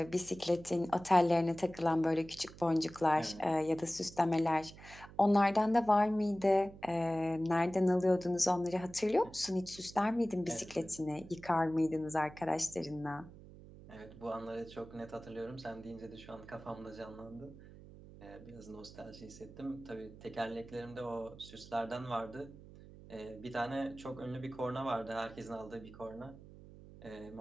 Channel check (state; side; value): noise; right; hum, 18 dB below the sound